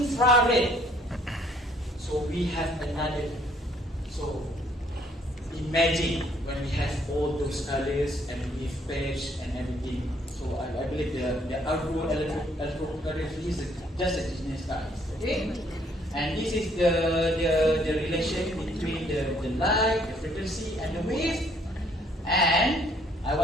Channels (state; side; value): normal; both; correlation 0.64